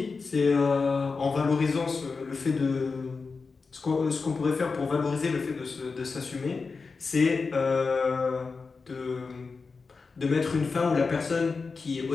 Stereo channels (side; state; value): right; quieter; 4.5 dB